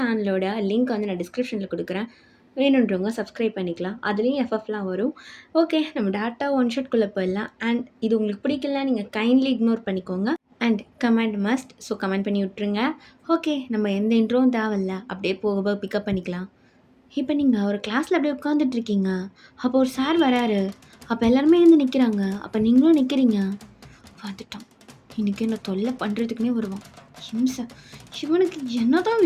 லிங்க் வந்து நான் டிஸ்கிரிப்ஷனில் கொடுக்குறேன், வேணுன்றவங்க சப்ஸ்கிரைப் பண்ணிக்கலாம். அதுலேயும் எஃப்எஃப்லாம் வரும். ஓகே, நம்ம டேட்டா ஒன் ஷாட்குள்ளே போயிடலாம். அண்ட் இது உங்களுக்கு பிடிக்கல, நீங்கள் கைண்ட்லி இக்னோர் பண்ணிக்கோங்க. And comment must, so comment பண்ணி விட்ருங்க. ஓகே, நம்ம எந்த இன்ட்ரோவும் தேவையில்ல, அப்படியே போக பிக்கப் பண்ணிக்கலாம். இப்போ நீங்கள் ஒரு கிளாஸில் அப்படியே உட்காந்துட்ருக்கீங்க, அப்போ ஒரு சார் வராரு. அப்போ எல்லாருமே எழுந்து நிற்கிறாங்க, அப்போ நீங்களும் நிற்கிறீங்க. வந்துட்டான், இன்றைக்கி என்ன தொல்லை பண்ணுறதுக்குனே வருவான், ஹிம்சை. இவனுக்கு என்ன தான்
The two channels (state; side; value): identical; both; correlation 1.00